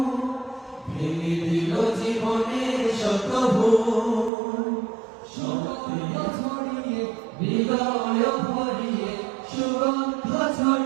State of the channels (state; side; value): drops out; left; at 4.3 s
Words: ভেঙে দিল জীবনের শত ভুল সত্য ছড়িয়ে হৃদয় ভরিয়ে সুগন্ধ